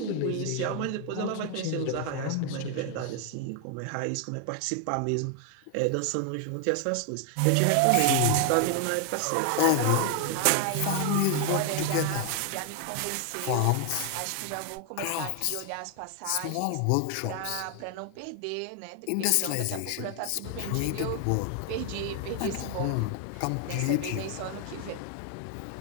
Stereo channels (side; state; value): both; different; correlation 0.01